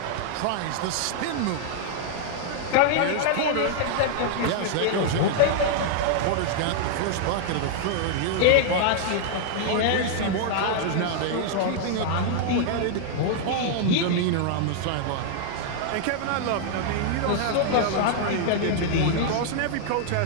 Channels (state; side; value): different; both; correlation 0.00